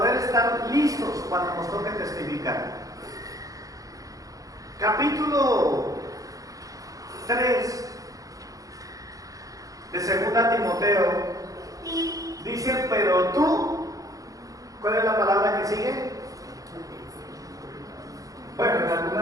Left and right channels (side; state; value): left; late; 0.17 ms